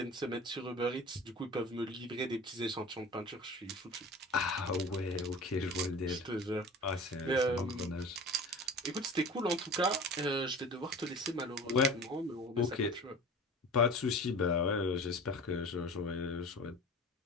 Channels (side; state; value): both; normal; correlation 0.38